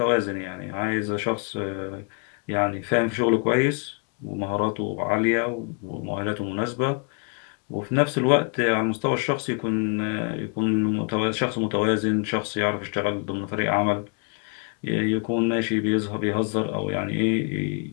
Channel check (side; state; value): right; quieter; 37.5 dB